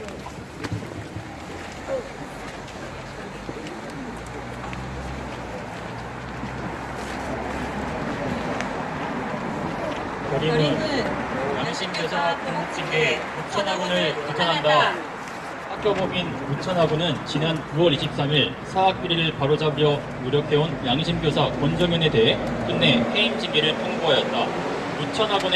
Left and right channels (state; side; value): identical; both; correlation 1.00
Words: 결의문 양심교사 공직에 우천학원을 규탄한다. 학교법인 우천학원은 지난 9월 23일 사학비리를 바로잡으려 노력해온 양심교사 권정현에 대해 끝내 해임 징계를 통보하였다.